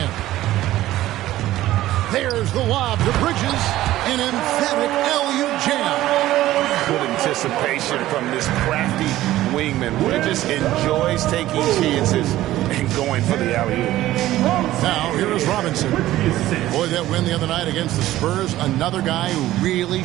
There's the lob to Bridges. An emphatic LU jam. Good anticipation from this crafty wingman. Bridges enjoys taking chances and going for the alley-oop. Now, here is Robinson. Boy, that win the other night against the Spurs, another guy who really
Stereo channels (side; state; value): left; quieter; 15.0 dB